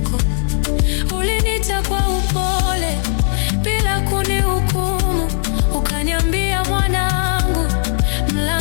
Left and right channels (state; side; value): silent; right; digital silence